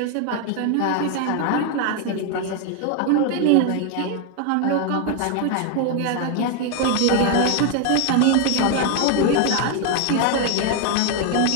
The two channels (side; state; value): both; different; correlation 0.01